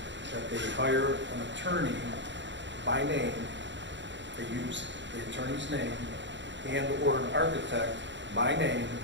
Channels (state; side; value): late; left; 0.53 ms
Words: that they hire an attorney by name, they use the attorney's name, and/or an architect by name?